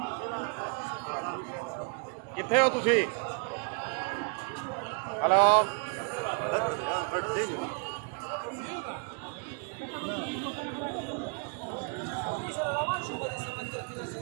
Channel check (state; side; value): quieter; left; 35.3 dB